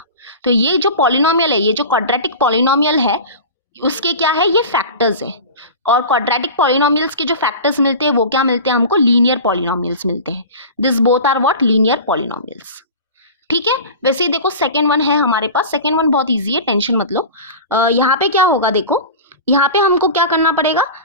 तो ये जो पॉलिनोमियल है, ये जो क्वाड्रेटिक पॉलिनोमियल है, उसके क्या है, ये फैक्टर्स है। और क्वाड्रेटिक पॉलिनोमियल्स के जो फैक्टर्स मिलते हैं वो क्या मिलते हैं हमको, लीनियर पॉलिनोमियल्स मिलते हैं। This both are what, linear polynomials. ठीक है, वैसे ही देखो सेकेंड वन है हमारे पास, सेकेंड वन बहुत इजी है, टेंशन मत लो। यहाँ पे क्या होगा, देखो यहाँ पे हमको क्या करना पड़ेगा,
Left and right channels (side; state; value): both; inverted; correlation -0.33